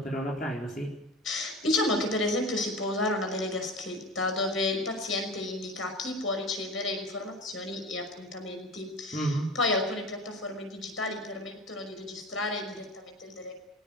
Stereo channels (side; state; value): both; normal; correlation 0.33